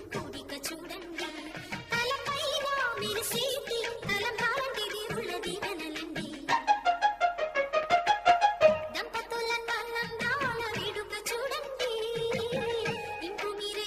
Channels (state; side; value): identical; both; correlation 1.00